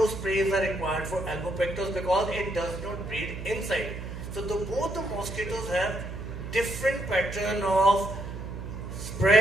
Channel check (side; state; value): right; noise; hum, 8 dB below the sound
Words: sprays are required for albopictus because it does not breed inside. So both the mosquitoes have different pattern of